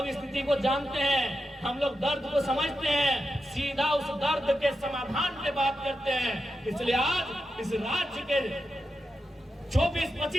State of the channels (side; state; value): both; normal; correlation 0.89